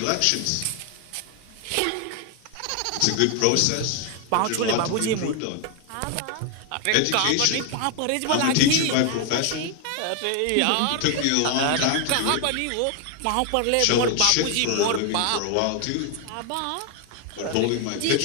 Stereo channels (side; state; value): both; different; correlation 0.01